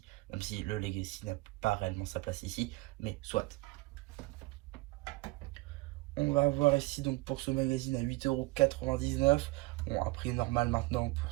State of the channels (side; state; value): left; quieter; 22.5 dB